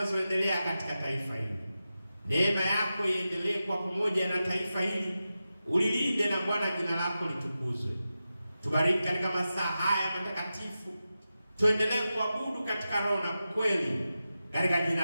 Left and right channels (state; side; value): inverted; both; correlation -0.92